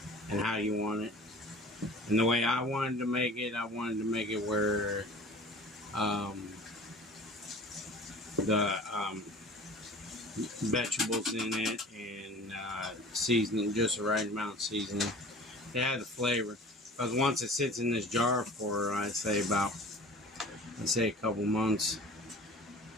and how you want it. And the way I wanted to make it where the vegetables in it and seasoning, just the right amount of seasoning. It had the flavor. Because once it sits in this jar for, I'd say a couple months,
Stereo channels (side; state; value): both; normal; correlation 0.43